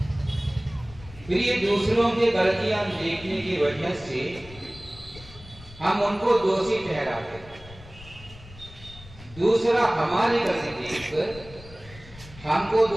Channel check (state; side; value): noise; left; rumble, 19 dB below the sound